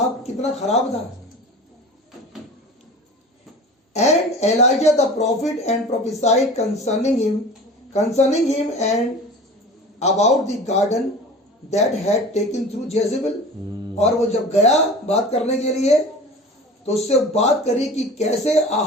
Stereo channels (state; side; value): normal; both; correlation 0.38